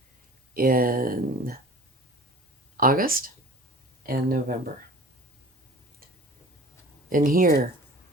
in August and November. And here,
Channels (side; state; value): both; normal; correlation 0.42